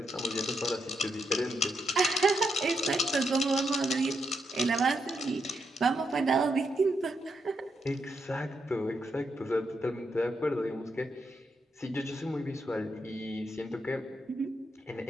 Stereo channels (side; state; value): both; normal; correlation 0.81